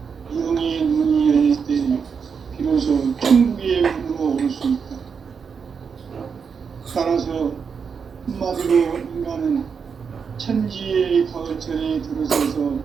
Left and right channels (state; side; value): quieter; left; 6.1 dB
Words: 영의 눈이 열릴 때 비로소 천국의 문으로 오를 수 있다. 따라서 한마디로 인간은 천지의 가을철에 들어서서